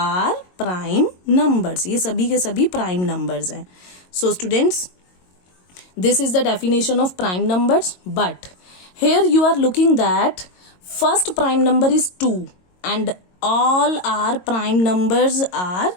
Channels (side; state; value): right; late; 22 ms